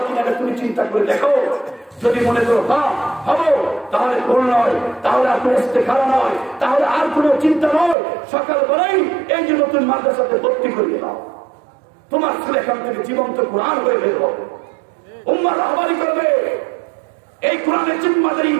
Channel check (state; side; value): drops out; left; at 8.0 s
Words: কিনা? তুমি চিন্তা করে দেখো। যদি মনে করো হ্যাঁ হবো, তাহলে ভুল নয়, তাহলে আর কোনো ইস্তেখারা নয়, তাহলে আর কোনো চিন্তা নয়। সকালবেলায় এই যে নতুন মাদ্রাসাতে ভর্তি করিয়ে দাও, তোমার ছেলে এখান থেকে জীবন্ত কোরআন হয়ে বের হবে, উম্মাহ রাহবারি করবে। এই কোরআনের জিম্মাদারি